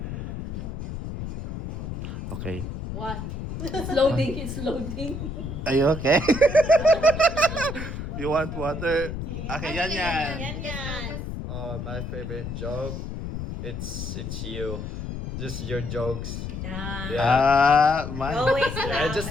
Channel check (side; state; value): left; noise; rumble, 6 dB below the sound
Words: Okay. One. It's loading. It's loading. Are you okay? You want water? Okay, yan. My favorite joke, it's you. Just your jokes. Mine. Always Yeah, laugh. just